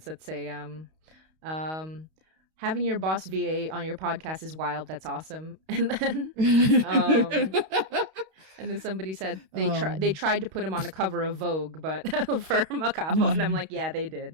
that say um having your boss VA on your podcast is wild. That's awesome. Um and then somebody said they um, tried to put him on the cover of Vogue, but for Macabo, and I'm like, yeah, they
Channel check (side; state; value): left; late; 32 ms